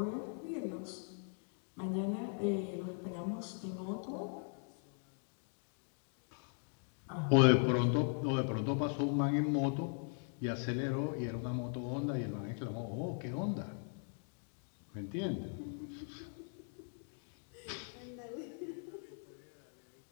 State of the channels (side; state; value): right; silent; 51 dB below the other